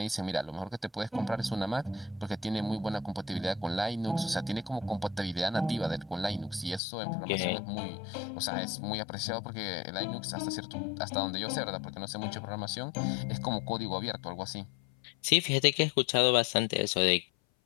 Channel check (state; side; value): drops out; right; at 6.8 s